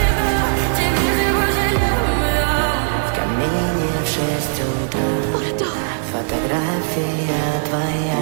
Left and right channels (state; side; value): silent; left; digital silence